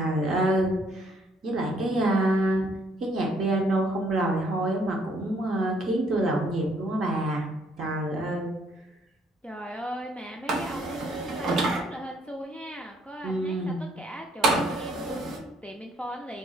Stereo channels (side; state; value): both; normal; correlation 0.66